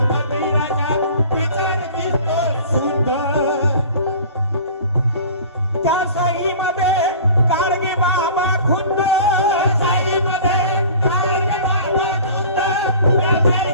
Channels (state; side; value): inverted; both; correlation -0.43